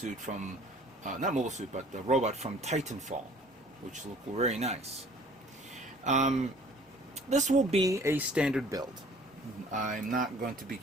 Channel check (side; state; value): both; normal; correlation 0.52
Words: from not mobile suit, but the robot from Titanfall, which looked very nice. This will be a standard build. I'm not going to